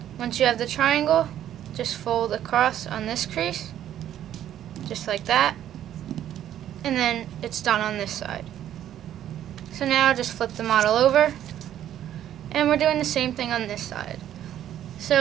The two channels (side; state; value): left; quieter; 11.2 dB